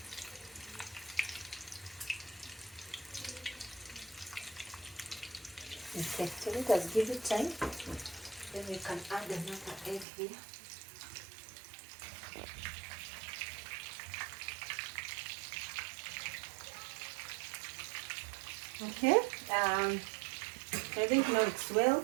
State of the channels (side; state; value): left; drops out; at 10.1 s